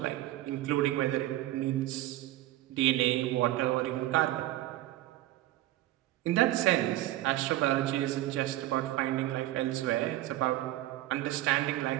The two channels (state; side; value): quieter; left; 15.8 dB